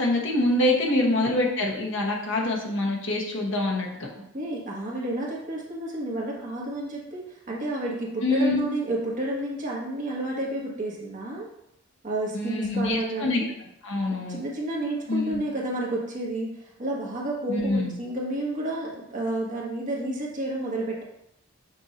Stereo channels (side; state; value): both; normal; correlation 0.45